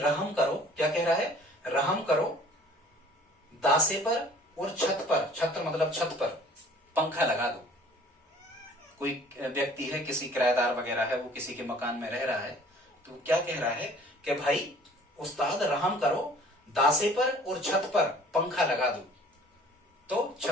करो। क्या कह रहा है? रहम करो दासे पर और छत पर, छत मतलब छत पर पंखा लगा दो। कोई व्यक्ति है, किसी किराएदार वगैरह है, वो किसी के मकान में रह रहा है, तो क्या कह रहा है कि भाई उस्ताद रहम करो दासे पर और छत पर पंखा लगा दो। तो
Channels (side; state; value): both; normal; correlation 0.51